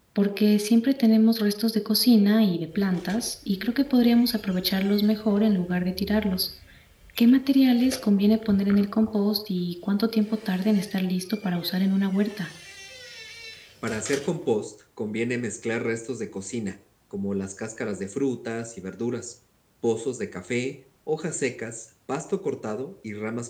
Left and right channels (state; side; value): identical; both; correlation 1.00